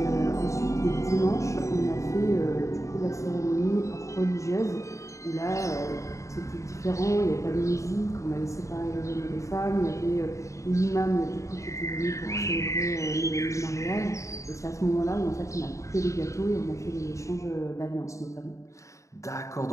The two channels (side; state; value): right; late; 0.15 ms